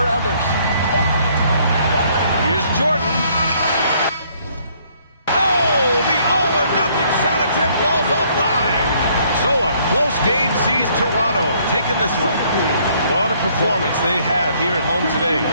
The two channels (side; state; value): both; inverted; correlation -0.65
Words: others. Here's Jordan. Oh, the all or win this one. What a performance they had here at home today.